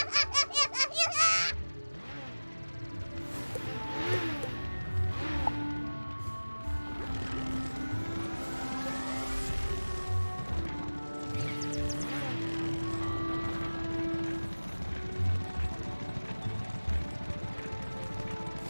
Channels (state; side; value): inverted; both; correlation -1.00